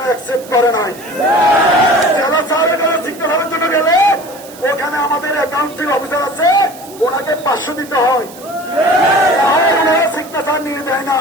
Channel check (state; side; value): noise; right; hiss, 19 dB below the sound